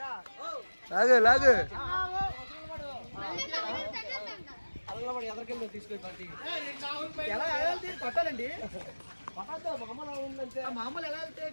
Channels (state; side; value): inverted; both; correlation -1.00